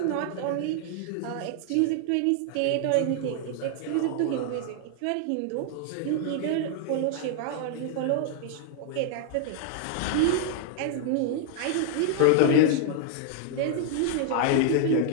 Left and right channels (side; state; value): both; different; correlation 0.00